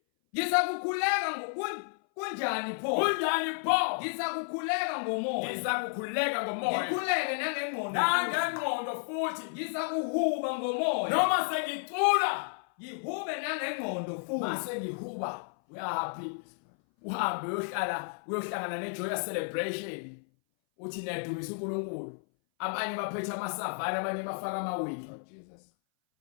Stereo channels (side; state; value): right; silent; 57 dB below the other